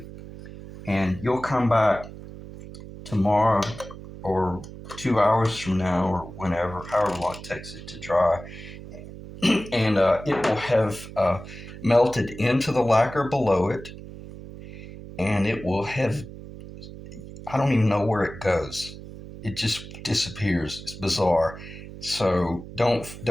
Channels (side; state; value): right; noise; hum, 14 dB below the sound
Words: And you'll come back tomorrow or 2 hours from now or whenever, however long it takes it to dry, and it will have melted into the lacquer below it, and it will have, I don't even know where it goes. It just disappears. It's bizarre. So